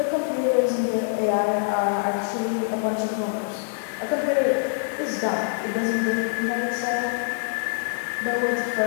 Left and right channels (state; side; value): silent; right; 57 dB below the other